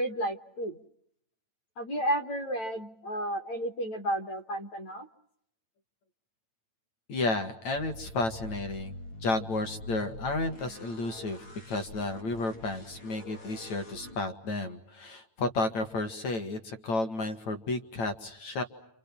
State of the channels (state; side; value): late; right; 9.0 ms